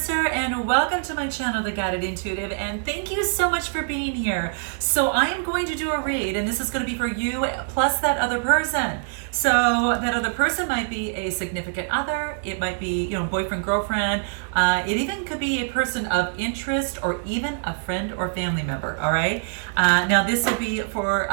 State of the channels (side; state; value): left; silent; digital silence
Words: and welcome to my channel, The Guided Intuitive, and thank you so much for being here. So I am going to do a read, and this is going to be for you plus that other person. So that other person might be a significant other, it might be, boyfriend, girlfriend, it even could be a person of interest or even a friend or family member, all right? Now this will be for